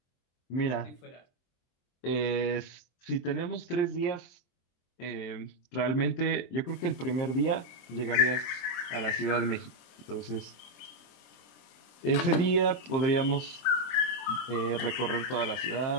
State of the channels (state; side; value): late; right; 23 ms